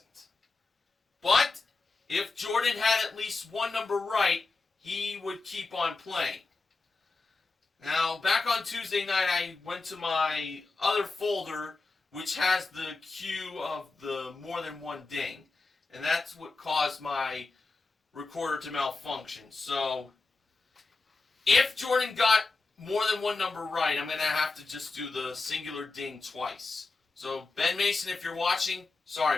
But if Jordan had at least one number right, he would keep on playing. Now, back on Tuesday night, I went to my other folder, which has the cue of the more than one ding. And that's what caused my recorder to malfunction. So, if Jordan got more than one number right, I'm going to have to just do the singular ding twice. So, Ben Mason, if you're watching,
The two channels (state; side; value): quieter; right; 3.8 dB